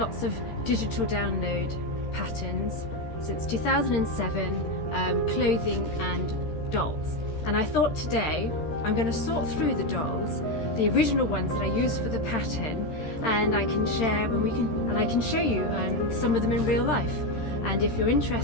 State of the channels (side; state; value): right; late; 13 ms